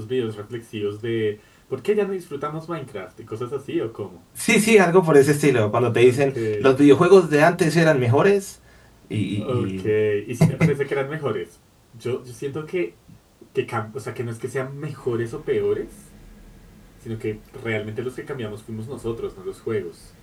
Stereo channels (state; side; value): identical; both; correlation 1.00